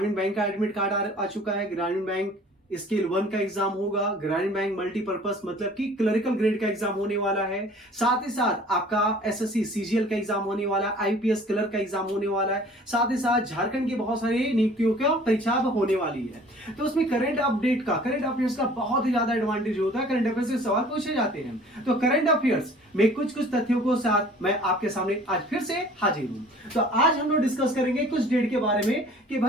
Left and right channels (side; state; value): both; normal; correlation 0.50